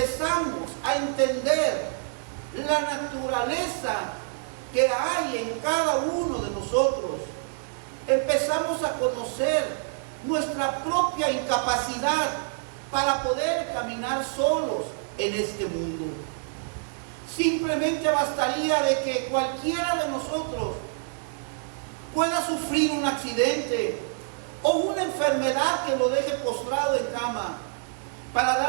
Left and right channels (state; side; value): silent; left; 60 dB below the other